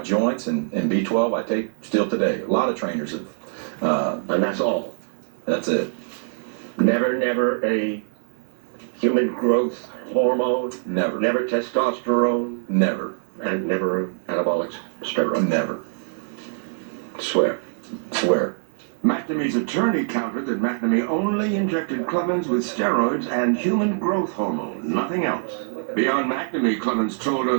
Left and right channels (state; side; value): silent; left; digital silence